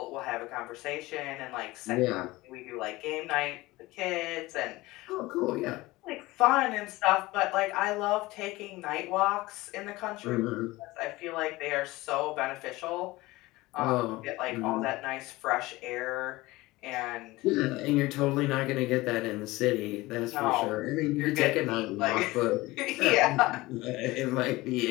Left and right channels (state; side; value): quieter; right; 20.0 dB